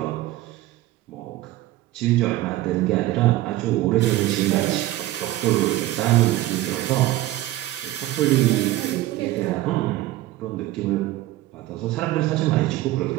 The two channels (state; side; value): quieter; left; 16.0 dB